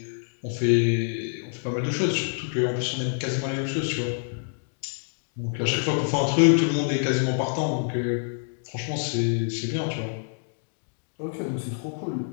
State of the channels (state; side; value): silent; right; digital silence